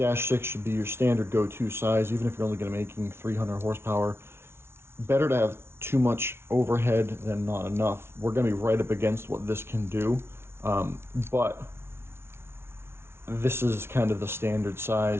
should be your standard go-to size, even if you're only going to be making 300 horsepower. Better to have too much overhead than not enough. We're going to be right up against what this can do, but this is kind of the standard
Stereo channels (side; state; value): left; late; 0.12 ms